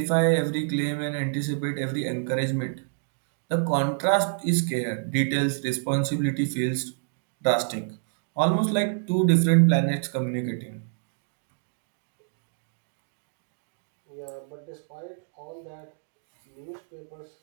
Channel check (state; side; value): silent; left; digital silence